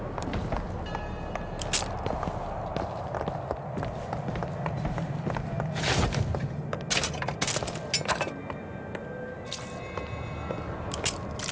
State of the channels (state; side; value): identical; both; correlation 1.00